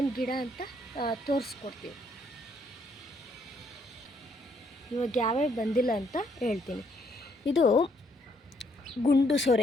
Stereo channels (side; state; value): both; normal; correlation 0.71